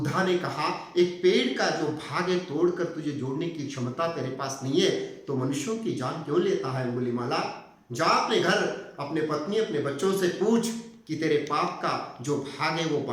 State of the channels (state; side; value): identical; both; correlation 1.00